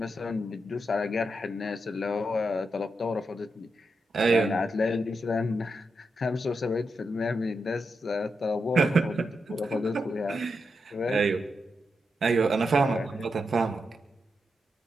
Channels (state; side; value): normal; both; correlation 0.85